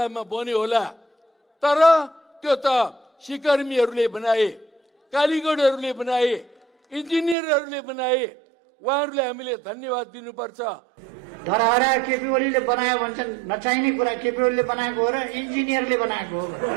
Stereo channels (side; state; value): left; drops out; at 7.4 s